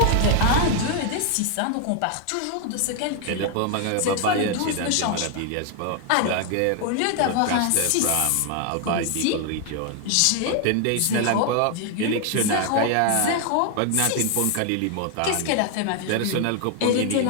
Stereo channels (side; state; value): both; different; correlation 0.00